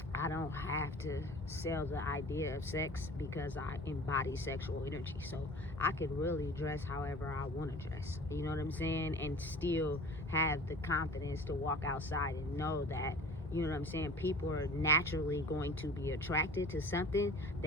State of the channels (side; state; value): both; normal; correlation 0.44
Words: I don't have to sell the idea of sex because I embody sexual energy. So I could really dress however I want to dress. You know what I'm saying? And still have the confidence to walk outside and know that, you know what I'm saying, people are naturally going to be attracted to something